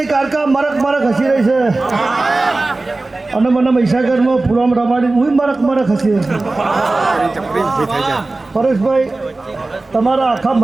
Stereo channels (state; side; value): quieter; left; 3.2 dB